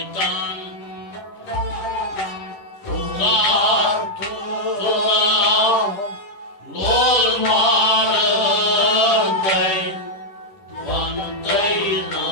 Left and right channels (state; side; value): late; right; 10 ms